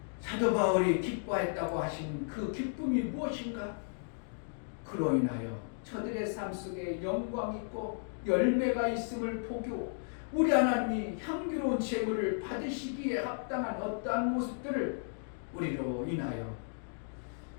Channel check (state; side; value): silent; right; digital silence